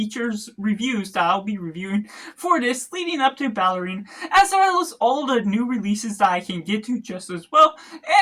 reviews that I'll be reviewing for this leading up to Ballerina, as well as all the new releases that I can get to just as well.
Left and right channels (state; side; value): identical; both; correlation 1.00